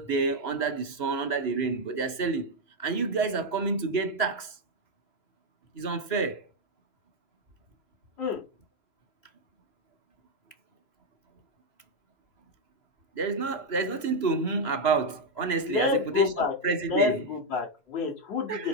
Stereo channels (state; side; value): late; right; 3.0 ms